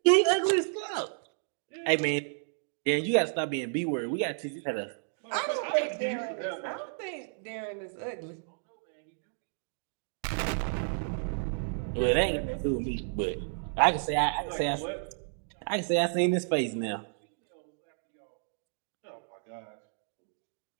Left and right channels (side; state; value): left; silent; digital silence